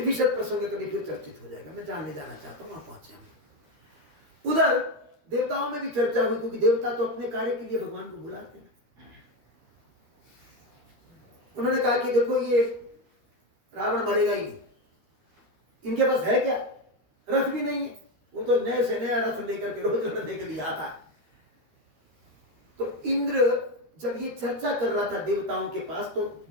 विशद प्रसंग कभी फिर चर्चित हो जाएगा, मैं जानने जाना चाहता हूं, वहां पहुंचे हम। उधर देवताओं में भी चर्चा हुई, क्योंकि देवता तो अपने कार्य के लिए भगवान को बुलाते हैं। उन्होंने कहा कि देखो ये रावण मरेगा ही नहीं, इनके पास है क्या? रथ भी नहीं है। वो तो नए से नया रथ लेकर के रोज लड़ने के लिए आता है। तो इंद्र जब ये चर्चा कर रहा था देवताओं के पास, तो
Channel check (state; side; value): late; left; 13 ms